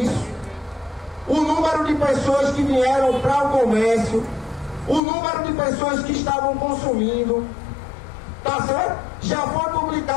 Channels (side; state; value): right; drops out; at 5.0 s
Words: O número de pessoas que vieram para o comércio, o número de pessoas que estavam consumindo, tá certo? Já foi